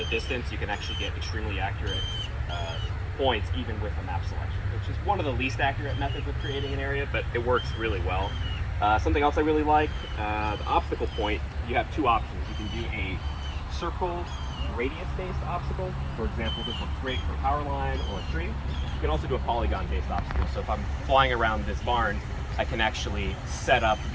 distance, you can actually get extremely accurate points even with a map selection, which is one of the least accurate methods of creating an area, but it works really well. Something else I really like, the obstacle point, you have 2 options. You can do a circle radius-based obstacle. For example, this looks great for a power line or a tree. You can also do a polygon-based obstacle. So if I'm flying around this barn, I can actually set up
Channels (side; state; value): both; identical; correlation 1.00